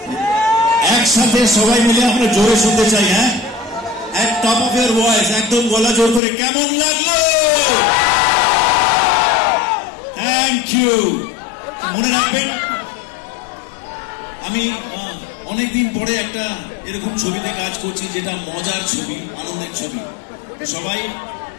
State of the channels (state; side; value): drops out; right; at 6.2 s